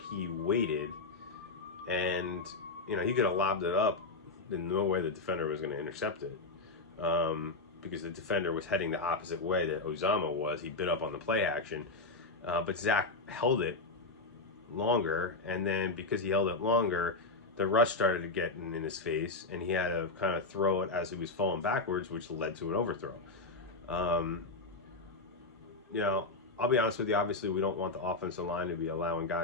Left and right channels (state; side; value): quieter; right; 3.4 dB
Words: he waited, and he could have lobbed it up. There's no way the defender was going to intercept it, because the defender was heading the opposite way that Uzama was. He bit up on the play action, but Zach held it longer, and then because he held it longer, the rush started getting in his face, and he had to kind of throw it as he was falling backwards, which led to an overthrow. I'll be honest with you. Obviously, we don't want the offensive line to be allowing